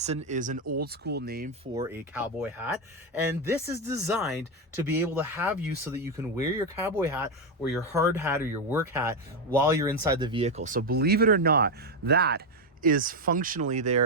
is an old school name for a cowboy hat, and this is designed to be able to have you so that you can wear your cowboy hat or your hard hat or your work hat while you're inside the vehicle. So believe it or not, that is functionally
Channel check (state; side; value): normal; both; correlation 0.07